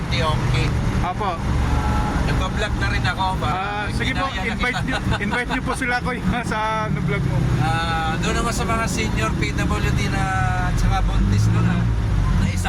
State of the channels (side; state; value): both; identical; correlation 1.00